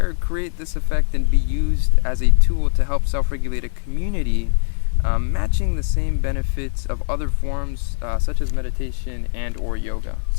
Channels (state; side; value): silent; right; 61 dB below the other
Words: create this effect and be used as a tool to help self-regulate a community, matching the same benefits of other forms such as meditation and or yoga?